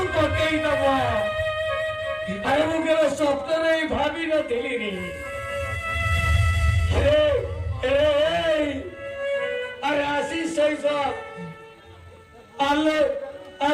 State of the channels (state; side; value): identical; both; correlation 1.00